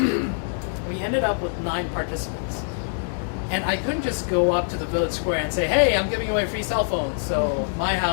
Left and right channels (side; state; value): right; silent; digital silence